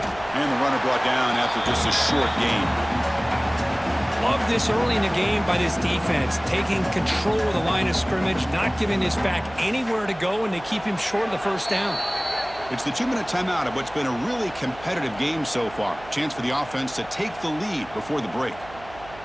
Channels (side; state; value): right; noise; hum, 19 dB below the sound